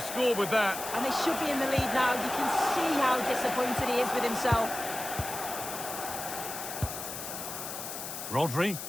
scored with that. And they should be in the lead now. You can see how disappointed he is with himself. Rodri.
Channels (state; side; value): noise; left; hiss, 7 dB below the sound